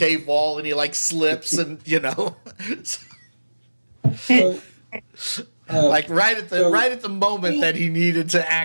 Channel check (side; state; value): both; inverted; correlation -1.00